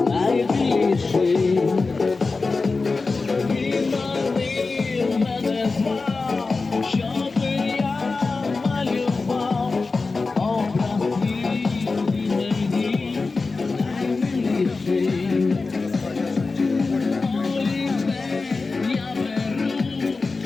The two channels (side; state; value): right; quieter; 4.0 dB